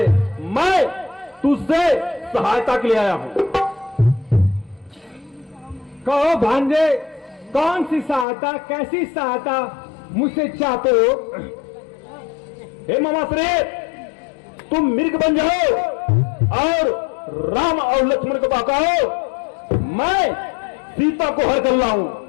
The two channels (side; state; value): right; drops out; at 8.2 s